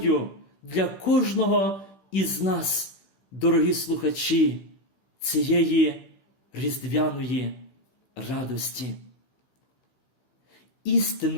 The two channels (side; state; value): right; late; 15 ms